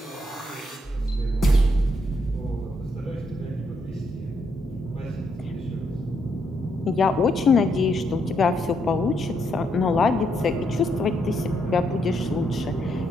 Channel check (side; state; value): both; normal; correlation 0.76